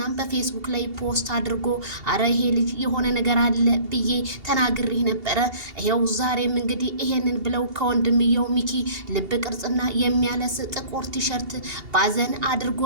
በፌስቡክ ላይ ፖስት አድርጎ አረ ይሄ ልጅ የሆነ ነገር አለ ብዬ ተናግሬ ነበረ። ይሄው ዛሬም እንግዲህ ይሄንን ብለው ከወንድምየው ሚኪ ልብ ቅርጽና የሚያለስ ጥቁር ቲሸርት ባዘን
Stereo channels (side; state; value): left; late; 2.8 ms